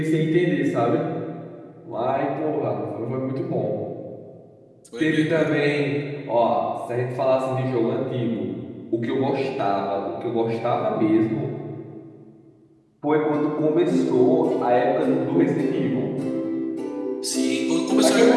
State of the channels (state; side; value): identical; both; correlation 1.00